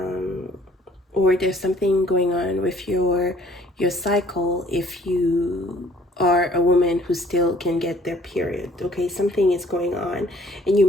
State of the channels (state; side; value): normal; both; correlation 0.58